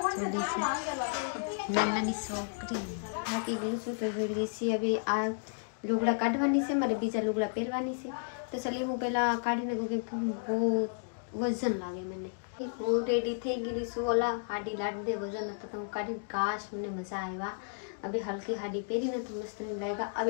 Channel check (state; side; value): silent; right; digital silence